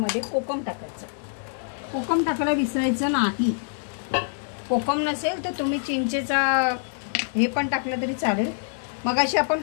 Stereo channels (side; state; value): right; silent; digital silence